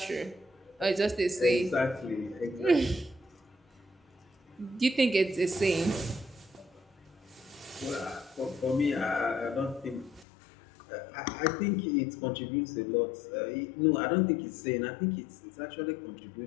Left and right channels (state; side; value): drops out; right; at 10.2 s